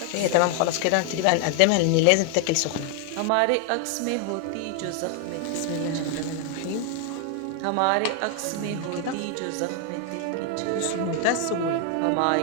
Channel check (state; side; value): different; both; correlation 0.00